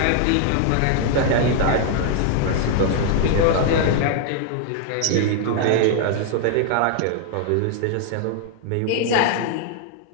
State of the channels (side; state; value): both; different; correlation 0.00